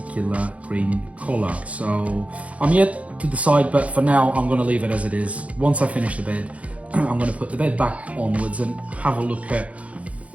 green color. So I'm yet to decide, but for now I'm going to leave it as it is. Once I finish the bed, I'm going to put the bed back onwards and have a look at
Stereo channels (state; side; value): late; left; 0.065 ms